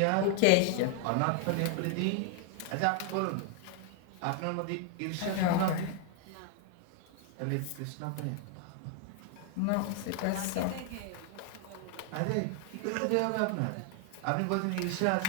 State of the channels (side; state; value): both; different; correlation 0.00